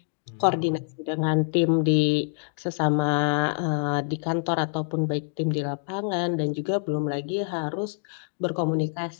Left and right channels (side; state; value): right; silent; digital silence